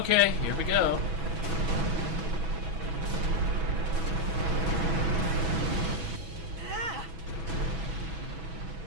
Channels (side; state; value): left; late; 6.1 ms